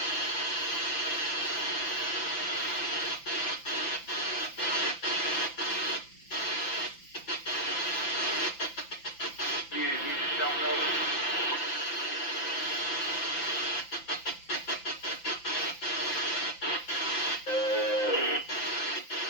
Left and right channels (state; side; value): late; right; 5.9 ms